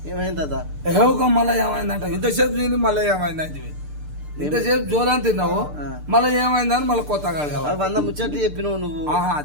ఏమైంది తాత? ఏవో మళ్ళీ ఏమైందంట ఇంతసేపు తిని మళ్ళీ ఏమైందంటే ఇంతసేపు జోలాన్ని తిన్నావు మళ్ళీ ఏమైందని మళ్ళీ కొత్తగా ఆ 100 ముచ్చట్లు చెప్పినావు నువ్వు.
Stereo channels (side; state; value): left; late; 6.7 ms